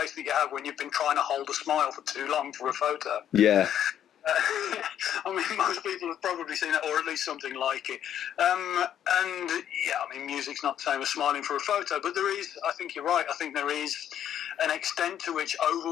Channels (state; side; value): quieter; right; 10.1 dB